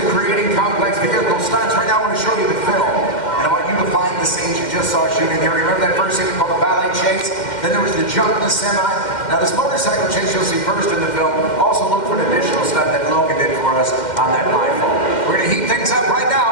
creating complex vehicle stunts. Right now I want to show you the film. And I want you to find the scenes you just saw shooting here. Remember that first scene called the ballet chase? Then there was the jump in the semi. Now this motorcycle chase you'll see first in the film. Also look for an additional stunt that Logan did for us on that rifle. We're going to heat things up right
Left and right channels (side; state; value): right; late; 2.1 ms